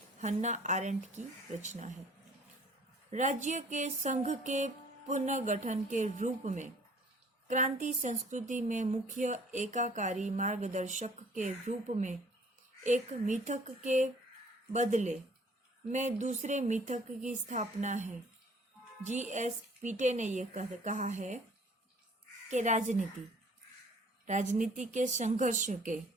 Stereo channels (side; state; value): both; normal; correlation 0.55